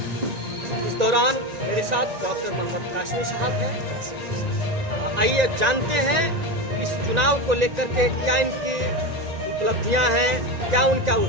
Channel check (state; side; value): late; left; 1.9 ms